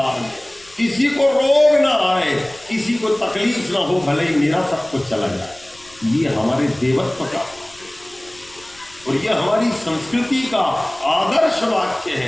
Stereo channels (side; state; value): left; noise; rumble, 27 dB below the sound